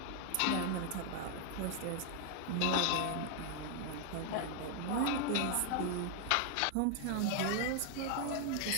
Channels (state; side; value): different; both; correlation 0.00